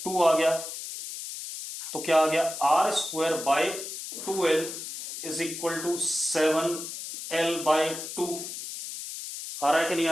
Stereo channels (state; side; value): noise; left; hiss, 8 dB below the sound